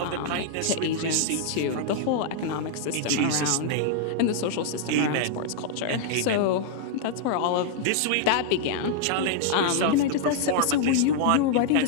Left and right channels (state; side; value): different; both; correlation -0.01